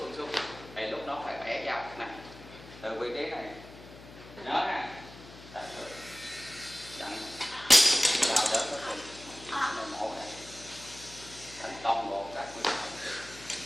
xuống. Thì lúc đó phải bẻ dao này. từ vị trí này nhớ ha, đặt rồi dặn vào đỡ cái phần này mổ này thành toàn bộ các nguyên liệu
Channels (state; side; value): noise; left; hum, 17 dB below the sound